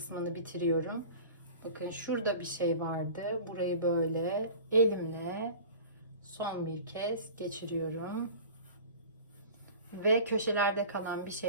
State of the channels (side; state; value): both; inverted; correlation -0.39